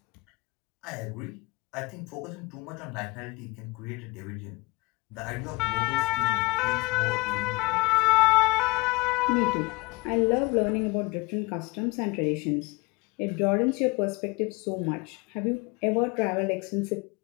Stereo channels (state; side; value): quieter; right; 25.2 dB